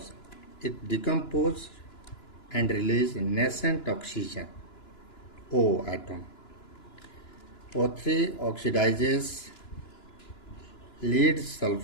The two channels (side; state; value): right; late; 2.9 ms